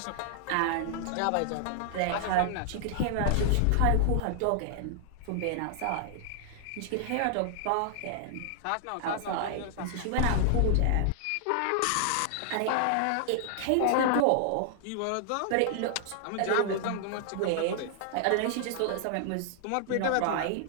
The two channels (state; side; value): different; both; correlation 0.00